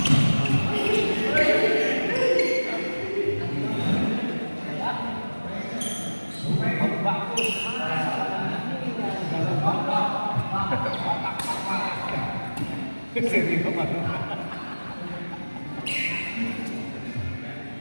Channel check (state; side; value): inverted; both; correlation -1.00